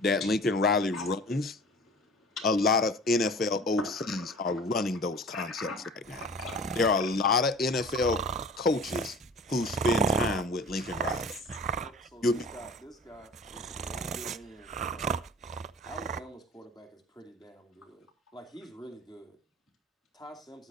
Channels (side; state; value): both; normal; correlation 0.43